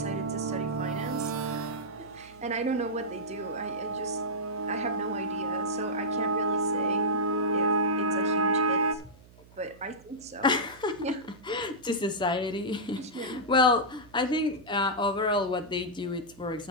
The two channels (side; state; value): right; noise; hum, 24 dB below the sound